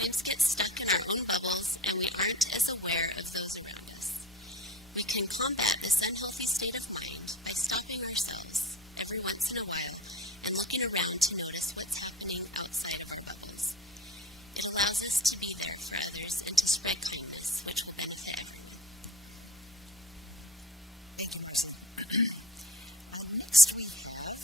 get stuck in our own bubbles and we aren't as aware of those around us. We can combat this unhealthy state of mind by stopping ourselves every once in a while and looking around to notice what's happening outside of our bubbles. It allows us to be there for others and to spread kindness, which will benefit everyone. Thank you, Marcy. Next we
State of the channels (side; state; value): both; normal; correlation 0.33